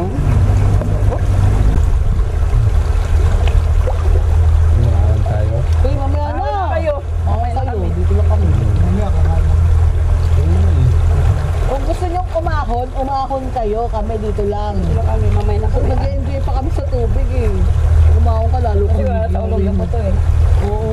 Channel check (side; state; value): both; identical; correlation 1.00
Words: kayo, kami dito lang. Wala kami, mamay na So, kami. nag-enjoy pa kami sa tubig eh. Kumaon ka lalo Kasi kami. wala sa ulong na po to eh. Oo.